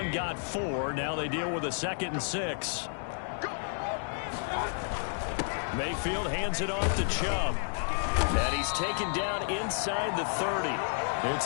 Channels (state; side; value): silent; right; digital silence